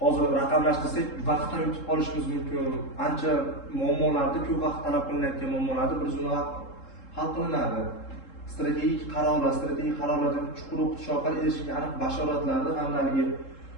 hozir raqamlashtirsak, vaqtdan yutib qolishimiz mumkin. Ancha muammolarda ko'p vaqt talab qilinayotgan muammolarni bir zumda hal qilinadi. Strategik qarorlarga chuqur o'qitish orqali erishilgan aniq bashoratlarni hamda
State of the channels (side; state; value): right; late; 3.7 ms